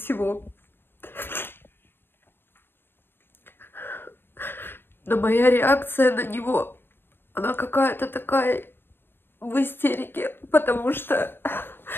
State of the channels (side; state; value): right; late; 0.10 ms